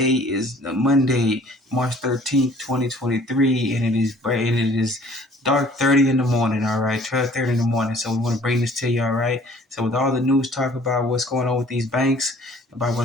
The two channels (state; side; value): normal; both; correlation 0.54